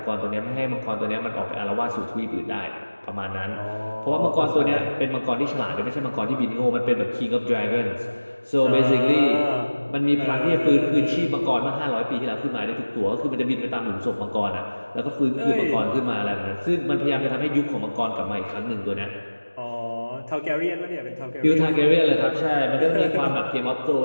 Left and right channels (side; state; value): both; inverted; correlation -1.00